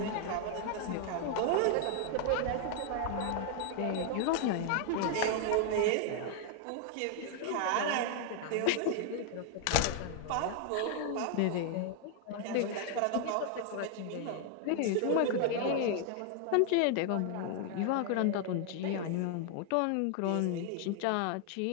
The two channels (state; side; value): different; both; correlation 0.00